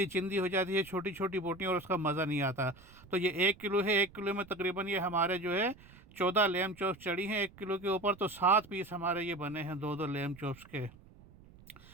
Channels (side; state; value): right; noise; rumble, 22 dB below the sound